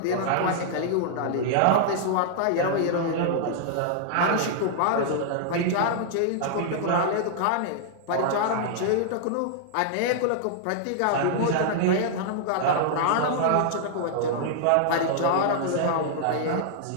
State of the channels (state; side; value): different; both; correlation -0.01